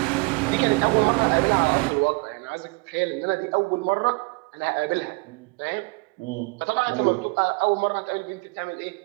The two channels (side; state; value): left; quieter; 28.3 dB